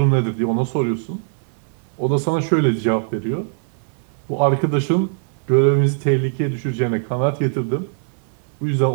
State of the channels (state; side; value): silent; left; 65 dB below the other